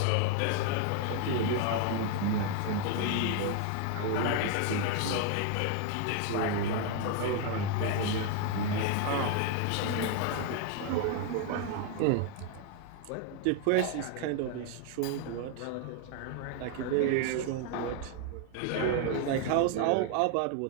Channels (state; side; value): different; both; correlation 0.00